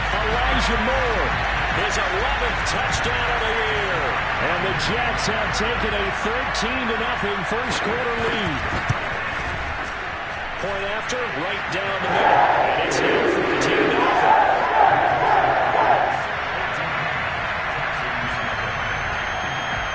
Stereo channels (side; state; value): both; identical; correlation 1.00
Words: Elijah Moore, his 11th touchdown of the year. And the Jets have taken a 13-0 first quarter lead. Point after, right down the middle. And it's now 14-0.